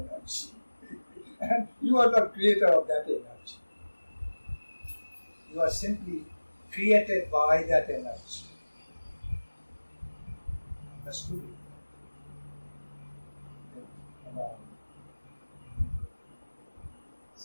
And you are the creator of that energy. You are simply created by that energy. Understood?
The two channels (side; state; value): both; inverted; correlation -1.00